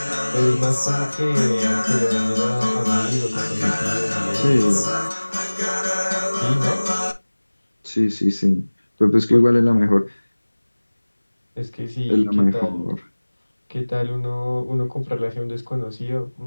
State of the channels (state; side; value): inverted; both; correlation -1.00